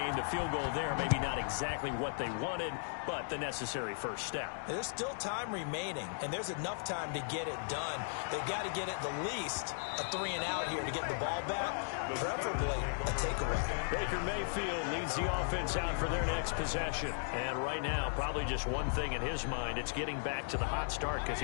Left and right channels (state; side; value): silent; right; digital silence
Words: The field goal there, maybe not exactly what they wanted, but the necessary first step. There's still time remaining, and there's enough time to get it done. They've got to get at the least a 3-and-out here to get the ball back, preferably a takeaway. Baker Mayfield leads the offense out for their next possession. And right now, probably just one thing in his mind, it's getting back to the hot start because